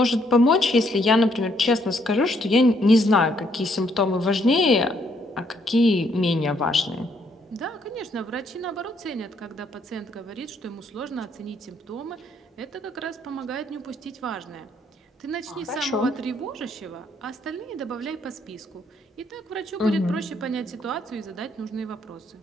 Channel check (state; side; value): normal; both; correlation 0.70